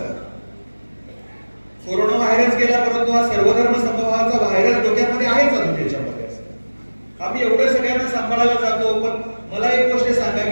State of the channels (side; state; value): both; inverted; correlation -1.00